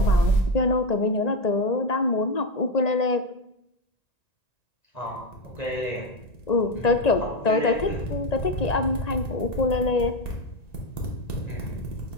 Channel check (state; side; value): late; right; 1.9 ms